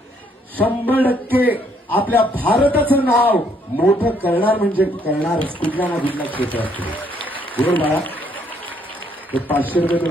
100% आपल्या भारताचं नाव मोठं करणार म्हणजे करणारच कुठल्या ना कुठल्या क्षेत्रात. बरोबर बाळा? ते 500 रुपये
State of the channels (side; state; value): both; normal; correlation 0.68